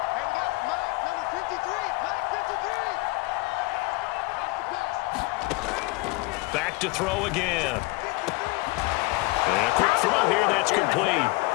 Back to throw again. And a quick throw here, that's complete.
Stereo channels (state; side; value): quieter; right; 23.7 dB